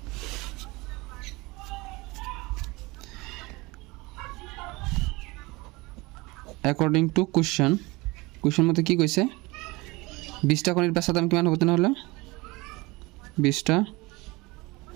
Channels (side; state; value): left; quieter; 23.2 dB